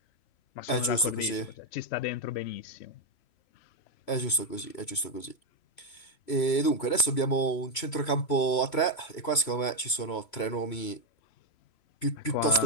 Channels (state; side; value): late; right; 3.0 ms